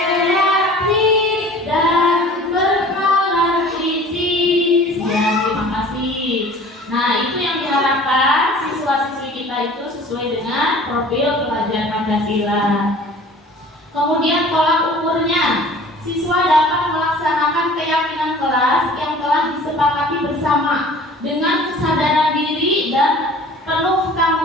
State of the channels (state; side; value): normal; both; correlation 0.46